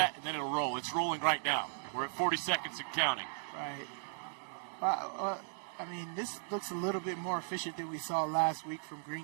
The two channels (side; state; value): left; silent; digital silence